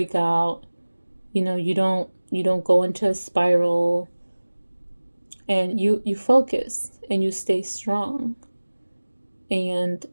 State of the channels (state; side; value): inverted; both; correlation -1.00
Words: out. You don't go into a spiral. And you focus and you stay strong. And